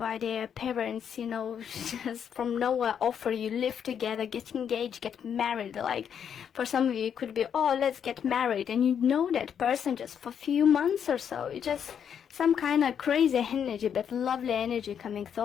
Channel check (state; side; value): quieter; right; 8.1 dB